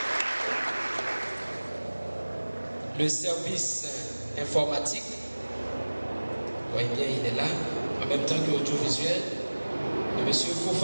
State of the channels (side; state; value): both; inverted; correlation -1.00